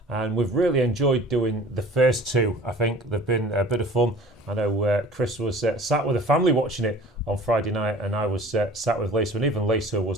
and we've really enjoyed doing the first two. I think they've been a bit of fun. I know Chris was sat with the family watching it on Friday night and I was sat with Lisa, and even Lisa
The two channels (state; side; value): normal; both; correlation 0.46